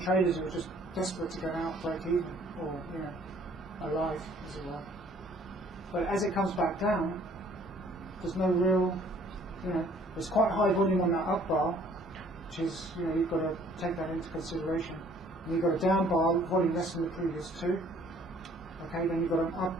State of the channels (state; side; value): normal; both; correlation 0.58